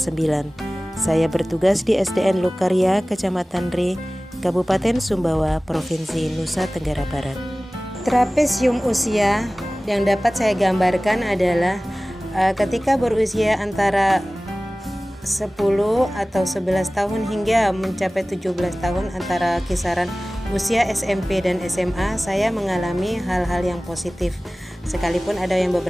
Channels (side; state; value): both; normal; correlation 0.98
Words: Saya bertugas di SDN Lokarya, Kecamatan Re, Kabupaten Sumbawa, Provinsi Nusa Tenggara Barat. Trapesium usia yang dapat saya gambarkan adalah ketika berusia antara 10 atau 11 tahun hingga mencapai 17 tahun, antara kisaran usia SMP dan SMA, saya mengalami hal-hal yang positif. Sekalipun ada yang